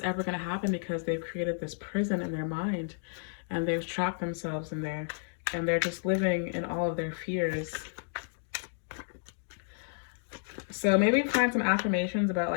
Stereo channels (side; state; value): right; silent; digital silence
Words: ever going to happen because they've created this prison in their mind, and they've trapped themselves in there, and they're just living in all of their fears. So maybe find some affirmations about